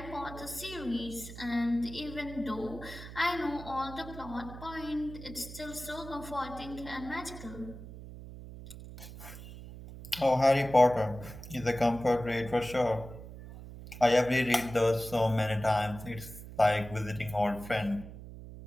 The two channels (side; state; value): right; noise; hum, 13 dB below the sound